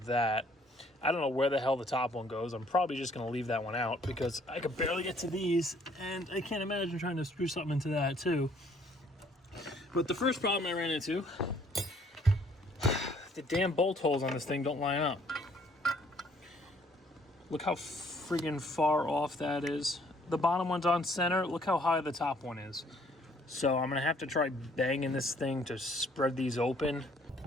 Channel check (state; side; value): normal; both; correlation 0.62